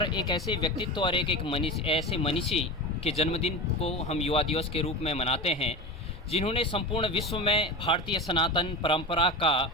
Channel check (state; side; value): normal; both; correlation 0.26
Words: एक ऐसे व्यक्तित्व और एक ऐसे मनीषी के जन्मदिन को हम युवा दिवस के रूप में मनाते हैं जिन्होंने संपूर्ण विश्व में भारतीय सनातन परंपरा का